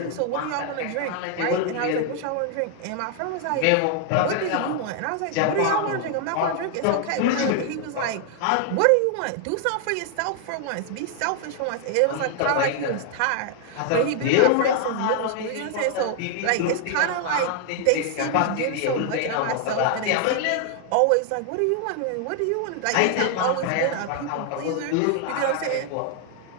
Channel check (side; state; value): both; different; correlation 0.00